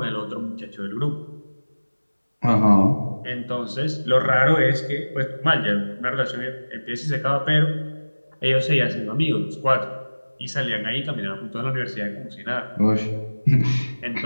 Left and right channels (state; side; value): inverted; both; correlation -1.00